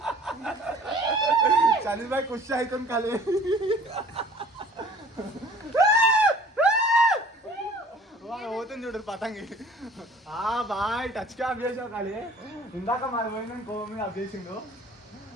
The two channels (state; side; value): normal; both; correlation 0.49